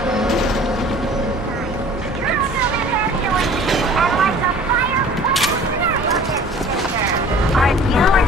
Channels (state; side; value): normal; both; correlation 0.47